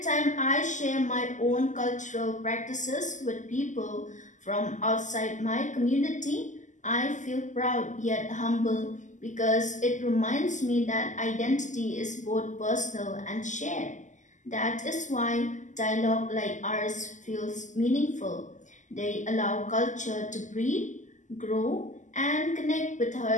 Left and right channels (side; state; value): right; late; 0.36 ms